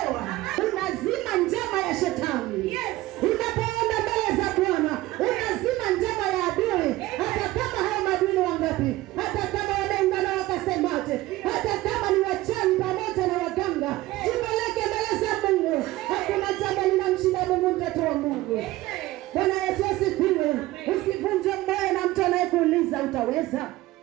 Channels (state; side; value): quieter; left; 17.6 dB